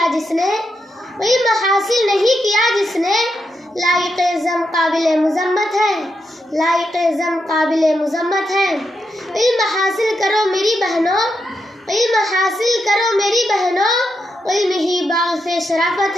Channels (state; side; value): normal; both; correlation 0.84